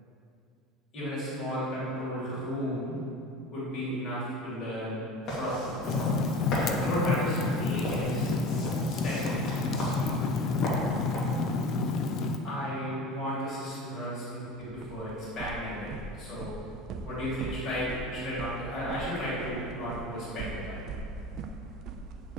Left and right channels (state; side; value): normal; both; correlation 0.35